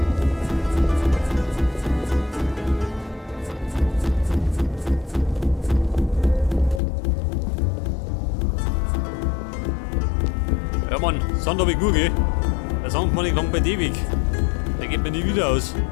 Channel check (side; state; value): right; drops out; at 6.8 s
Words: Ja Mann, Sand habe ich gut, gell? Der Sand man nicht lang bei dir weg. Der geht mir nie wieder aus.